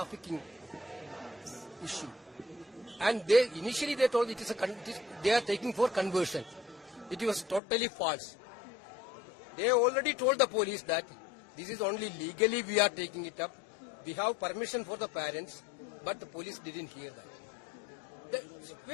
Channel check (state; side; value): drops out; right; at 7.6 s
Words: issue. And initially they told they are taking for conversion. It was totally false. They already told the police that this is only legally we are taking it up. We have permission for the parents, but the police didn't hear that. The